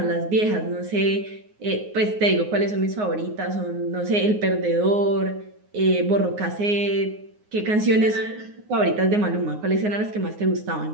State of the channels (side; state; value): left; late; 9.6 ms